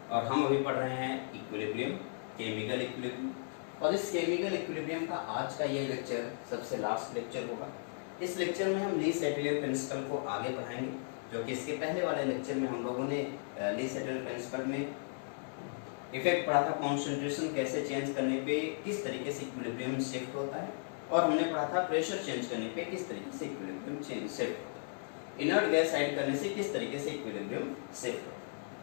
और हम अभी पढ़ रहे हैं इक्विलिब्रियम, केमिकल इक्विलिब्रियम। और इस केमिकल इक्विलिब्रियम का आज का ये लेक्चर सबसे लास्ट लेक्चर होगा। इस लेक्चर में हम ली सेटलियर प्रिंसिपल को आगे बढ़ाएंगे, जो कि इसके पहले वाले लेक्चर में हम लोगों ने ली सेटलियर प्रिंसिपल में इफेक्ट पढ़ा था, कॉन्सेंट्रेशन कैसे चेंज करने पे किस तरीके से इक्विलिब्रियम शिफ्ट होता है, और हमने पढ़ा था प्रेशर चेंज करने पे किस तरीके से इक्विलिब्रियम चेंज शिफ्ट होता है, इनर्ट गैस ऐड करने से किस तरीके से इक्विलिब्रियम शिफ्ट होता है।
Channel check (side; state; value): right; silent; digital silence